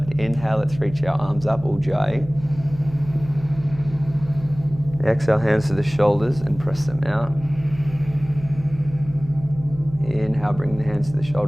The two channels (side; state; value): right; noise; hum, 15 dB below the sound